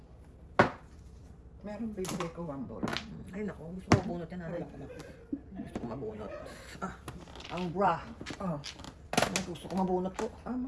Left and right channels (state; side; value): identical; both; correlation 1.00